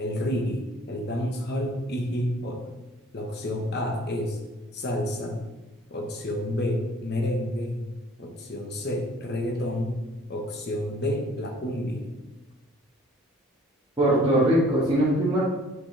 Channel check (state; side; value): normal; both; correlation 0.55